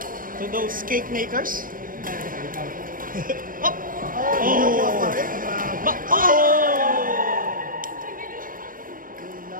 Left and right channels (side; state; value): left; late; 0.40 ms